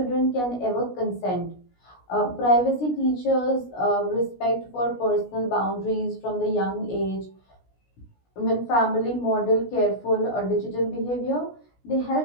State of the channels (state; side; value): late; right; 16 ms